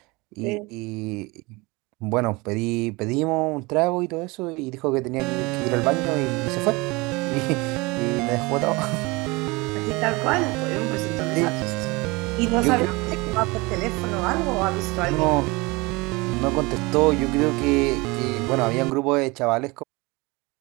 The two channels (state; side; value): quieter; left; 24.6 dB